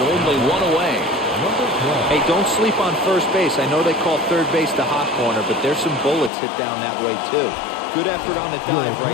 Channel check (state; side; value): drops out; right; at 6.3 s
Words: 1 away. Hey, don't sleep on first base. I know they call third base the hot corner, but there's some bullets hit down that way, too. Good effort on the dive